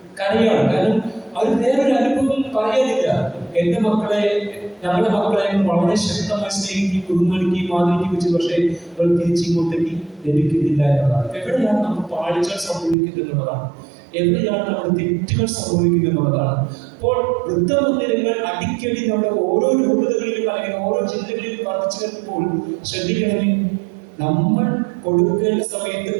കരയാണ്? കാരണം അവർ വേറൊരു അനുഭവം പറയാനില്ല. എന്റെ മക്കളെ, ഞങ്ങളുടെ മക്കളെ വളരെ ശക്തമായി സ്നേഹിക്കുകയും ബഹുമാനിക്കുകയും ആദരിക്കുകയും, പക്ഷേ അവർ തിരിച്ചിങ്ങോട്ടേക്ക് ലഭിക്കുന്നില്ല എന്നതാണ്. എവിടെയാണ് നമുക്ക് പാളിച്ചകൾ സംഭവിക്കുന്നത് എന്നുള്ളതാണ്, എവിടെയാണ് നമ്മുടെ തെറ്റുകൾ സംഭവിക്കുന്നത് എന്നുള്ളതാണ്. അപ്പോൾ വൃദ്ധമന്ദിരങ്ങൾ അടിക്കടി നമ്മുടെ ഓരോ രൂപതകളിലും അല്ലെങ്കിൽ ഓരോ ജില്ലകളിലും വർദ്ധിച്ചു വരുമ്പോൾ ശ്രദ്ധിക്കണമേ, നമ്മൾ കൊടുക്കേണ്ട സമയത്ത്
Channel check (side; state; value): left; drops out; at 13.0 s